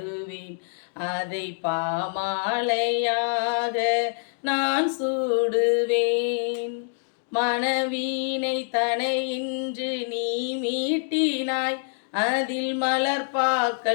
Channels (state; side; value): silent; right; digital silence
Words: அதை பாமாலையாக நான் சூடுவேன். மனவீனை தனை இன்று நீ மீட்டினாய், அதில்